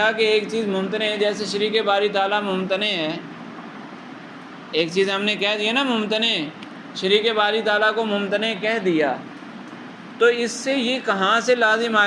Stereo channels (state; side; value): identical; both; correlation 1.00